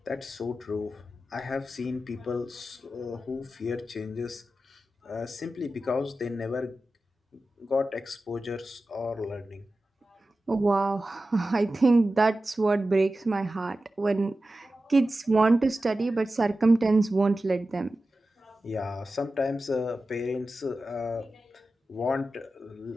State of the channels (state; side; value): normal; both; correlation 0.94